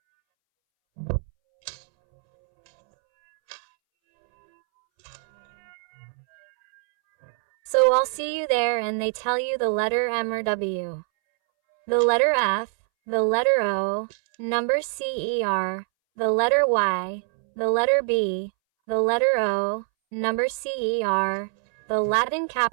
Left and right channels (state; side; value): silent; left; 63 dB below the other